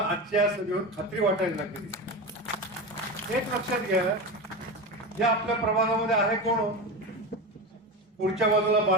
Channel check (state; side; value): normal; both; correlation 0.22